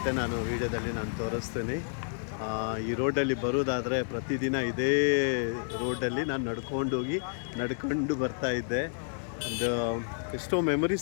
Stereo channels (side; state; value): right; silent; digital silence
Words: ನಾನು ವೀಡಿಯೋದಲ್ಲಿ ನಾನು ತೋರಿಸ್ತೀನಿ. ಈ ರೋಡಲ್ಲಿ ಬರೋದಾದರೆ ಪ್ರತಿದಿನ ಇದೇ ರೋಡಲ್ಲಿ ನಾನು ನಡ್ಕೊಂಡು ಬರ್ತಾ ಇದ್ದೆ. ಒಂದು ಎಷ್ಟೋ